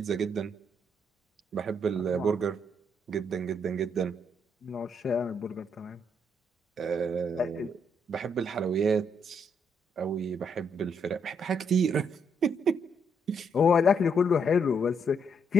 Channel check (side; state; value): both; normal; correlation 0.74